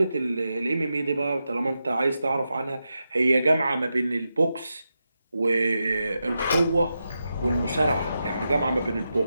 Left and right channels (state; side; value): inverted; both; correlation -0.88